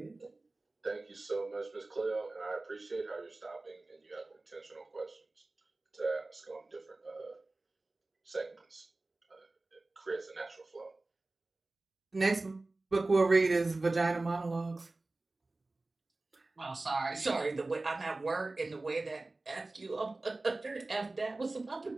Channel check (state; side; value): quieter; left; 3.1 dB